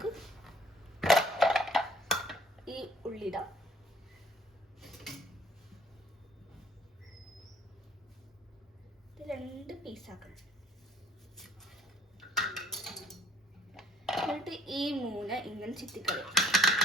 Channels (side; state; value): both; normal; correlation 0.58